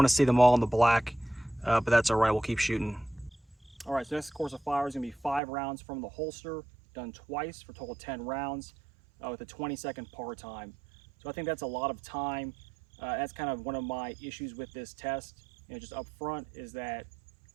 to see them all in the black, but that's all right, we'll keep shooting. All right, so this course of fire is gonna be 5 rounds from the holster, done twice for a total of 10 rounds with a 20-second par time. So I think that's a lot of time. That's kind of one of my issues with this test, just up front, is that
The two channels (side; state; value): left; drops out; at 5.4 s